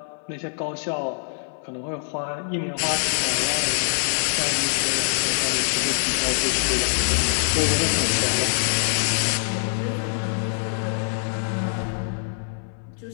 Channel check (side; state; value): right; silent; 58 dB below the other